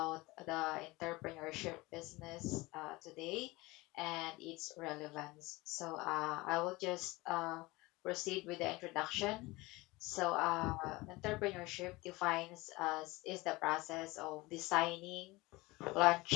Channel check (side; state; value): right; quieter; 21.9 dB